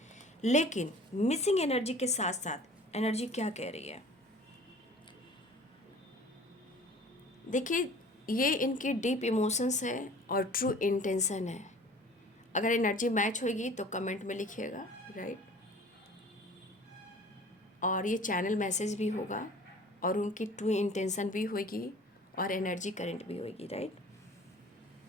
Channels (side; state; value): both; normal; correlation 0.46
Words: लेकिन मिसिंग एनर्जी के साथ साथ एनर्जी क्या कह रही है, देखिए, ये इनकी डीप इमोशंस है और ट्रू इंटेंशन है। अगर एनर्जी मैच होगी तो कमेंट में लिखिएगा, राइट। और ये चैनल मैसेज भी होगा और उनकी ट्रू इंटेंशन भी होगी और एनर्जी करंट भी होगी, राइट।